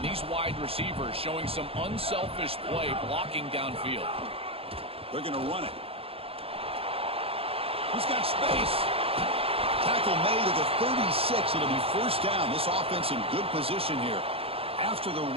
these wide receivers showing some unselfish play blocking downfield. They're going to run it. He's got space. Tackle made at the 36. It'll be first down. This offense in good position here. After the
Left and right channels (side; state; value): left; late; 0.28 ms